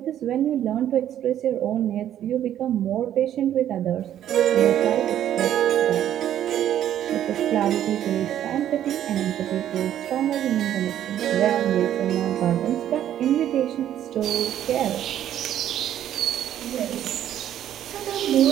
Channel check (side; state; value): left; quieter; 11.1 dB